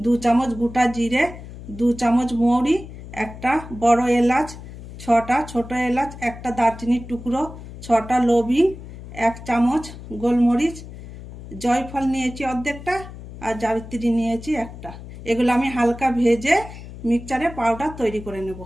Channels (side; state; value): left; noise; hum, 14 dB below the sound